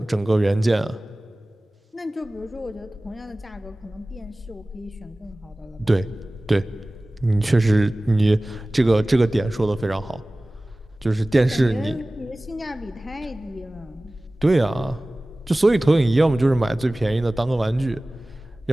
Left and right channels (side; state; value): both; normal; correlation 0.98